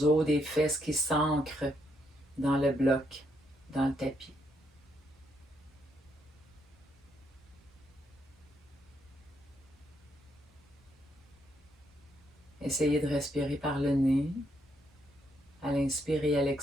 os des fesses qui s'ancrent dans le bloc, dans le tapis. Essayez de respirer par le nez, à l'inspire et à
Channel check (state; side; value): normal; both; correlation 0.76